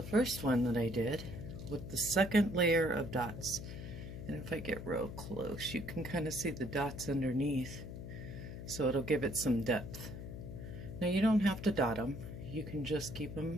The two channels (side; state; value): left; noise; hum, 9 dB below the sound